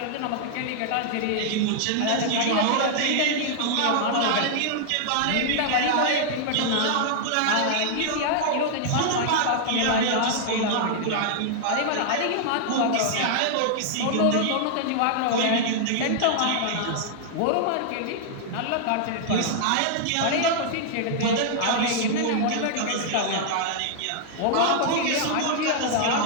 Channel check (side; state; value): both; different; correlation -0.01